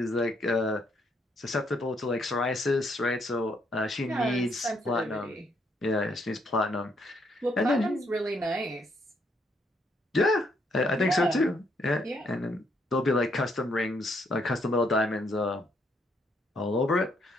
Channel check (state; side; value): normal; both; correlation 0.72